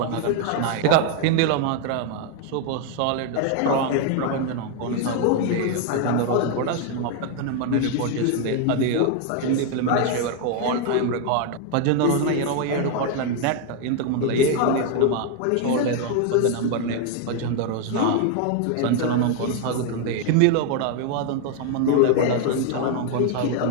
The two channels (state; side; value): different; both; correlation 0.00